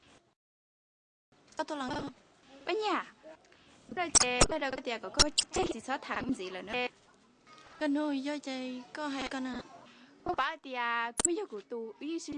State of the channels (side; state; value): both; identical; correlation 1.00